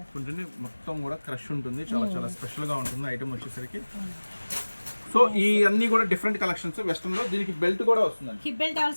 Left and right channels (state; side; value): inverted; both; correlation -1.00